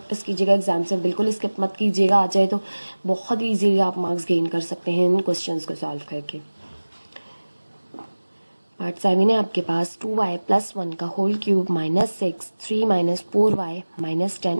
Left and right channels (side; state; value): both; inverted; correlation -1.00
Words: कीजिएगा, एग्जाम से बिल्कुल स्किप मत कीजिएगा। आ जाए तो बहुत ईजीली आप मार्क्स गेन कर सकते हैं इन क्वेश्चंस को सॉल्व करके। पार्ट 7 है आपके पास 2y + 1 का whole cube -6 3 - 4y - 10